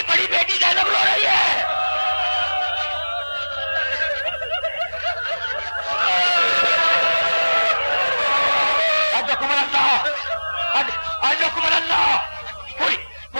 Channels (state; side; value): inverted; both; correlation -1.00